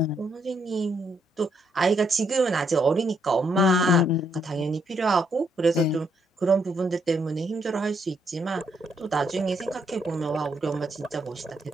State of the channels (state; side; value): normal; both; correlation 0.74